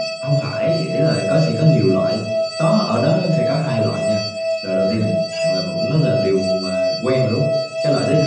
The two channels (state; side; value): identical; both; correlation 1.00